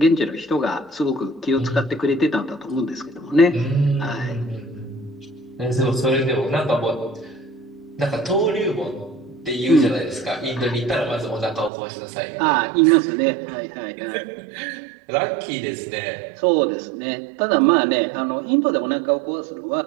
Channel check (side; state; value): left; drops out; at 11.7 s